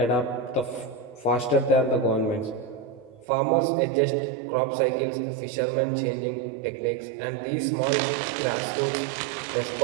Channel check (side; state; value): left; drops out; at 3.2 s